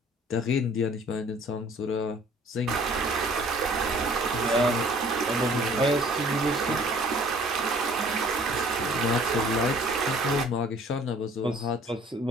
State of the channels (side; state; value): both; normal; correlation 0.54